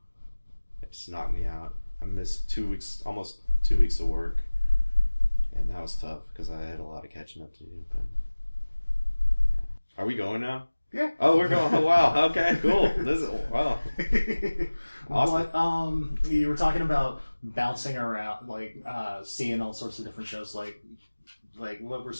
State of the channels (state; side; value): inverted; both; correlation -1.00